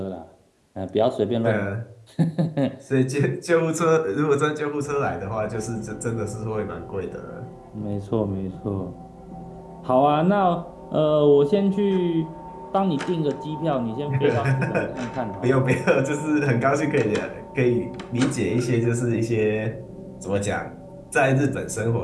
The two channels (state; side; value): identical; both; correlation 1.00